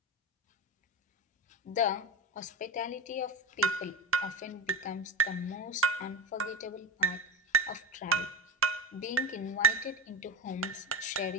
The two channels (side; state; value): both; normal; correlation 0.23